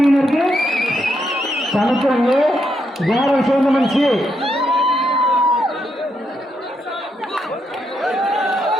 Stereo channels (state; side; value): normal; both; correlation 0.79